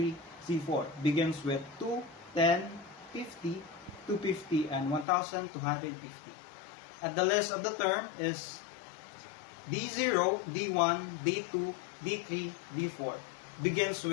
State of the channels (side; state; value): right; drops out; at 5.1 s